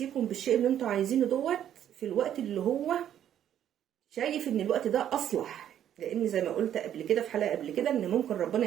بالشيء اللي انتوا عايزينه دوت في الوقت اللي هو شايف ان الوقت ده اصلح. لان زي ما قلت قبل كده في حلقة قبل كده ان ممكن ربنا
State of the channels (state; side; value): quieter; left; 10.4 dB